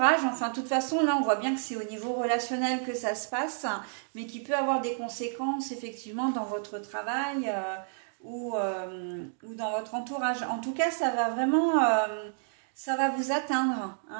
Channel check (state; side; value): silent; left; digital silence